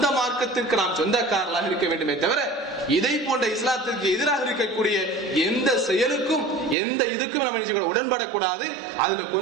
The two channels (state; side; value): drops out; left; at 6.8 s